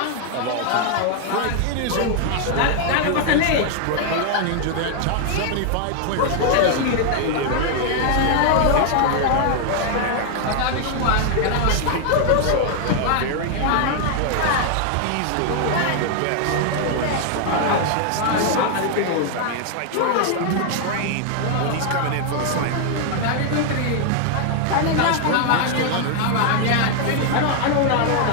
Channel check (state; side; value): different; both; correlation 0.00